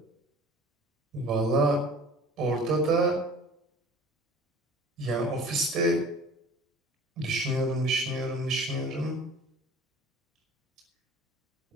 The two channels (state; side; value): normal; both; correlation 0.45